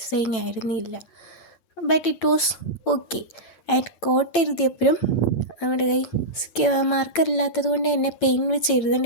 ആയിരുന്നില്ല. But it was okay. And coat എഴുതിയപ്പോഴും നമ്മുടെ കൈ മാർക്കർ ഇല്ലാത്തത് കൊണ്ട് തന്നെ പെയിൻ വെച്ച്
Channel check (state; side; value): late; right; 9.0 ms